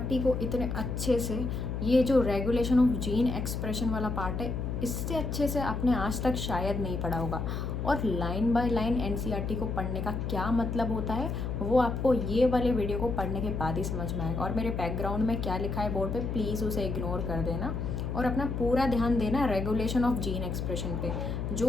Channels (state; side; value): noise; left; hum, 3 dB below the sound